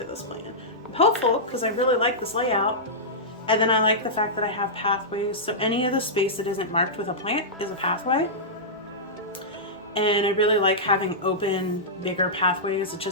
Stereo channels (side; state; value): both; normal; correlation -0.13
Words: this plan. I'm hopeful because I really like this layout. And then I like the fact that I have pathways. So any of the space that isn't marked with a plant is a pathway. And I really like having open, bigger pathways. It